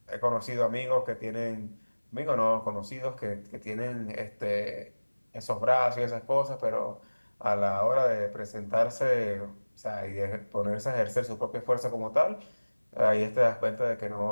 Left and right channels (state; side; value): inverted; both; correlation -1.00